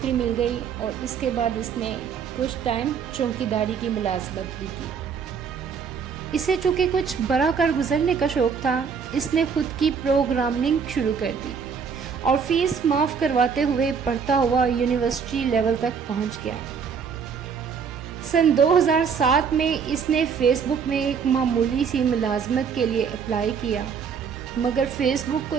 मिल गई और इसके बाद इसने कुछ टाइम चौकीदारी की मुलाजमत भी की। इसे चूँकि कुछ बड़ा कर गुजरने का शौक़ था, इसने खुद की प्रोग्रामिंग शुरू कर दी और फीस माफ़ करवाते हुए पढ़ता हुआ यूनिवर्सिटी लेवल तक पहुंच गया। सन 2007 में इसने फेसबुक में एक मामूली सी मुलाजमत के लिए अप्लाई किया, मगर फेसबुक को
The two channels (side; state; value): left; quieter; 6.4 dB